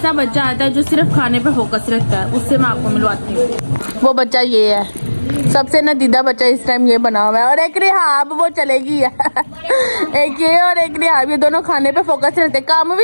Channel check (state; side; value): inverted; both; correlation -1.00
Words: बच्चा आता है जो सिर्फ खाने पे फोकस रखता है, उससे मैं आपको मिलवाती हूँ। वो बच्चा ये है, सबसे नदीदा बच्चा इस टाइम ये बना हुआ है। और एक रिहाब वो चलेगी एक ये और एक रिहाब, ये दोनों खाने पे फोकस रहते। काम